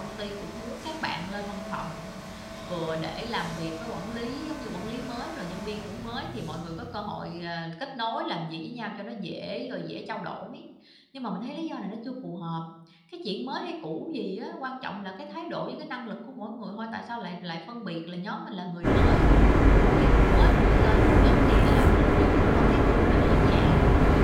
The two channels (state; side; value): identical; both; correlation 1.00